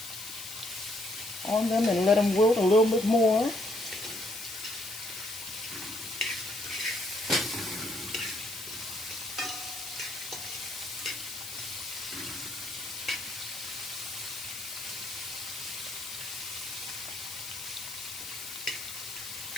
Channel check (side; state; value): left; noise; hiss, 10 dB below the sound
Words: on them and let them wilt a little bit more.